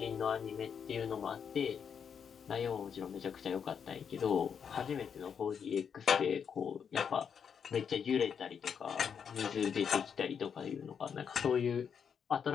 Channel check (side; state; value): right; quieter; 7.2 dB